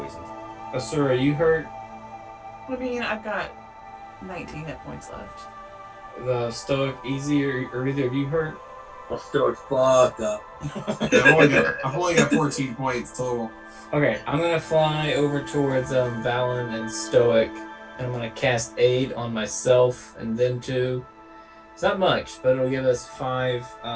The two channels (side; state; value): both; identical; correlation 1.00